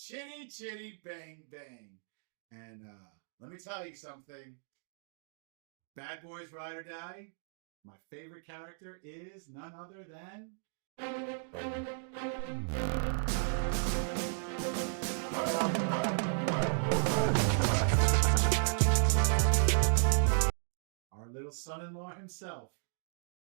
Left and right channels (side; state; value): left; silent; digital silence